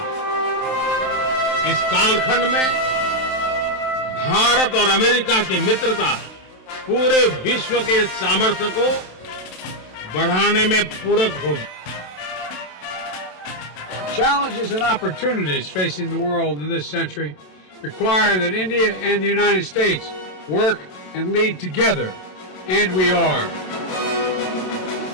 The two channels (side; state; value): right; late; 27 ms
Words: इस कालखंड में भारत और अमेरिका की मित्रता पूरे विश्व के सामर्थ्य को बढ़ाने में पूरक होगी। Challenges and opportunities facing the world in this century require that India and the United States work and lead together, and we are.